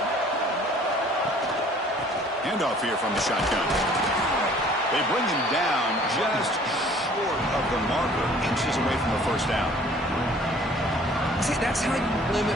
Handoff here from the shotgun. They bring him down just short of the marker, inches away from the first down. See, that's how you limit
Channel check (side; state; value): both; normal; correlation 0.54